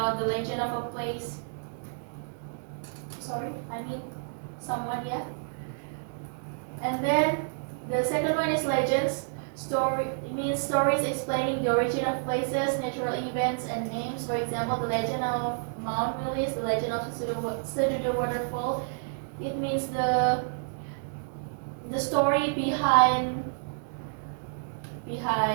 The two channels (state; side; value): silent; left; digital silence